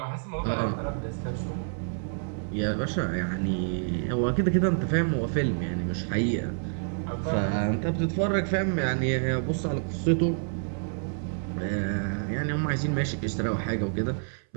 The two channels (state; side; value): silent; left; 59 dB below the other